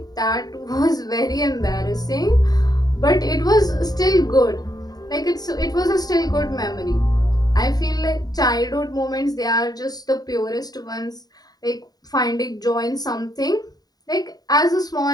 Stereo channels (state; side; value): late; right; 0.19 ms